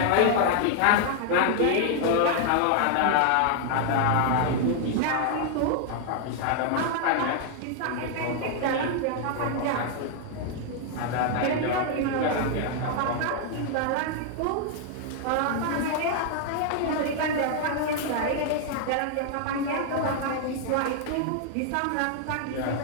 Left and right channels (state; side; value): different; both; correlation 0.00